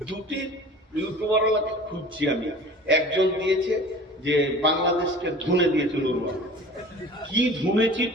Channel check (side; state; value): both; normal; correlation 0.42